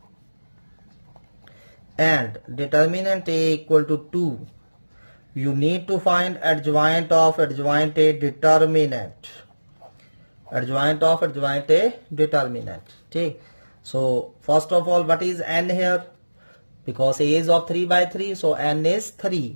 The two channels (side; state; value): both; inverted; correlation -1.00